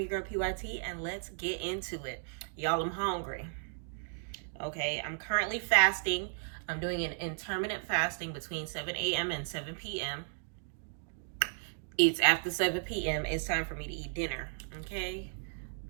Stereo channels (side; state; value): left; silent; digital silence